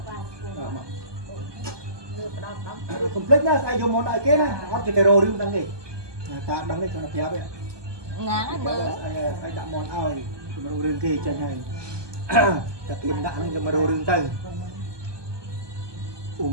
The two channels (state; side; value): late; left; 1.2 ms